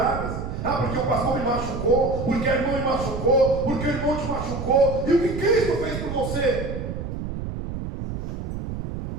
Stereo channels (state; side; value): noise; right; rumble, 6 dB below the sound